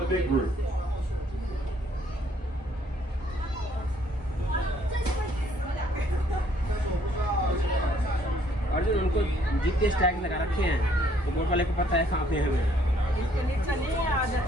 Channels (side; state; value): both; normal; correlation 0.65